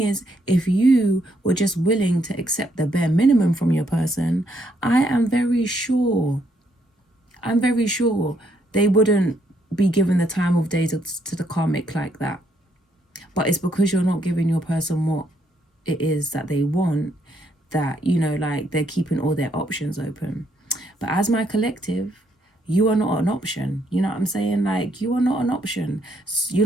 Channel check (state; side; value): normal; both; correlation 0.73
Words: is, if you were just willing to accept the bare minimum from your person, I'm very sure they wouldn't be given the time of day to the karmic like that. But it's because you're not giving your person what it is that they want, that, you know, like, they're keeping all their options open. But as my collective, you are not an option. You know what I'm saying? Like, you are not an option.